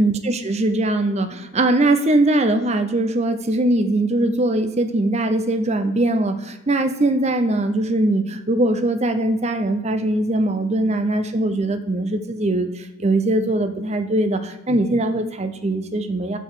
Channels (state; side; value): normal; both; correlation 0.65